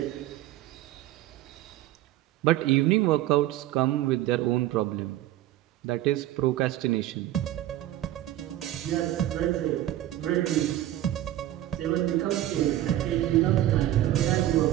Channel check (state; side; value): quieter; left; 13.9 dB